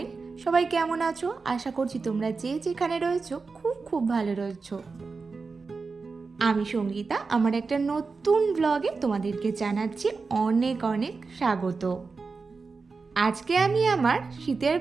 সবাই কেমন আছো? আশা করছি তোমরা যে যেখানে রয়েছো খুব ভালো রয়েছো। আমি সঙ্গীতা, আমার একটা নতুন ব্লগে তোমাদেরকে জানাচ্ছি অনেক স্বাগত। আজকে আমি আমার শীতের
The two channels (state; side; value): quieter; left; 4.4 dB